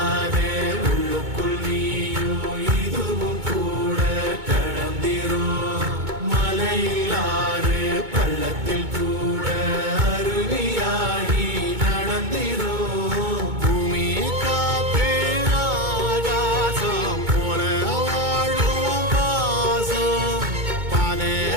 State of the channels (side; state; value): left; late; 2.2 ms